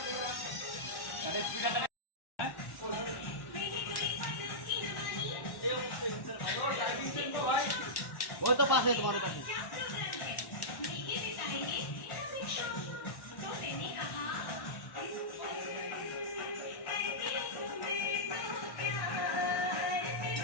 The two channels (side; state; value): right; late; 1.1 ms